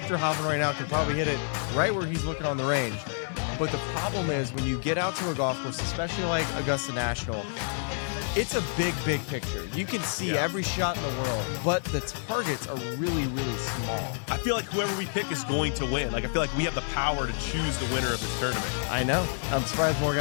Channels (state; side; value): silent; right; 59 dB below the other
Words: Hovland right now can probably hit it right where he's looking on the range. But the problem is when you get out to a golf course, especially like Augusta National, it's a big picture. You can see every shot in the world, but the targets are really, really small. I feel like whoever we pick is going to win. Like, I feel like we have the power to choose the winner of this tournament. I know. I'm surprised more